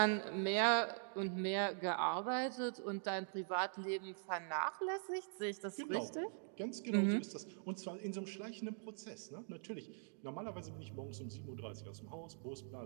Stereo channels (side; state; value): left; silent; digital silence